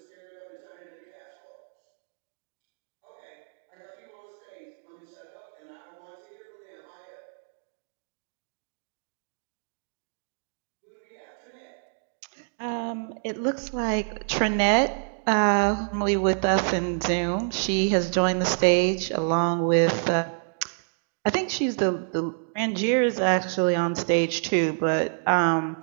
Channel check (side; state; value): left; silent; digital silence